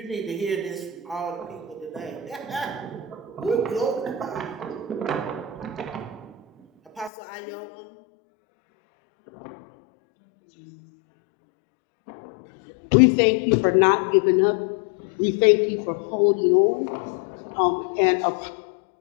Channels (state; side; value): drops out; right; at 7.1 s